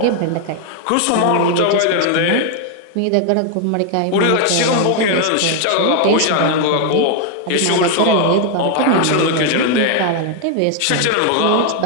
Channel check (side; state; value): both; different; correlation 0.01